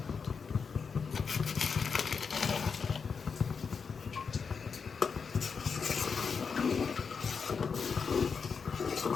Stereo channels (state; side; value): quieter; right; 5.7 dB